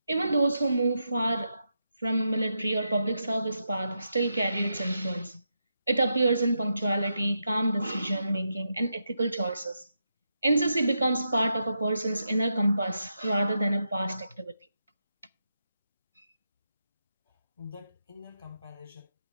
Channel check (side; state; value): both; inverted; correlation -0.84